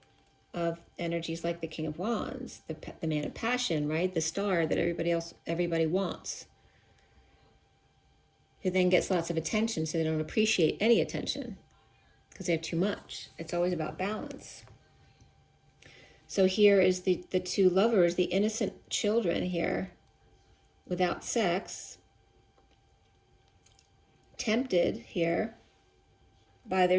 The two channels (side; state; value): both; identical; correlation 1.00